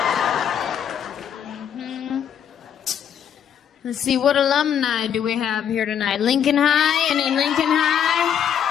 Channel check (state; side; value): quieter; right; 8.8 dB